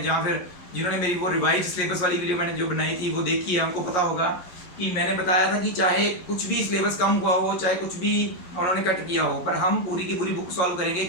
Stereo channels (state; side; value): late; right; 11 ms